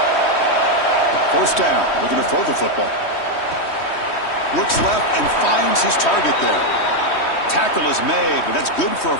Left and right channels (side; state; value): right; late; 3.1 ms